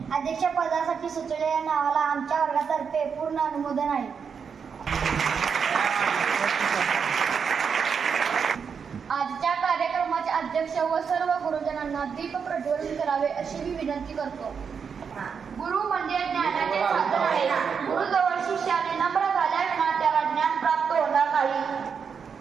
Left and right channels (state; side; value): quieter; left; 6.4 dB